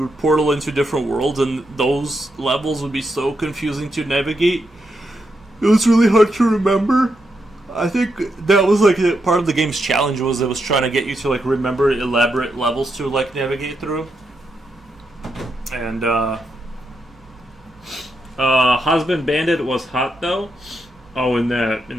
portal into different worlds, and those levels would be so confusing to navigate. It was really hard to remember. I think that was like part of the game's challenge, was it was trying to get you to like remember elaborate levels to like navigate through. And Husband Bandit was hot though. Oh, in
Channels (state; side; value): normal; both; correlation 0.83